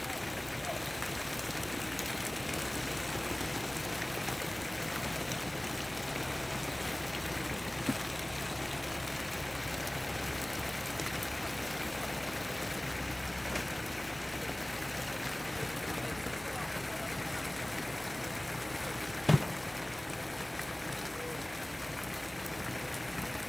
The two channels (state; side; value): noise; right; hum, 22 dB below the sound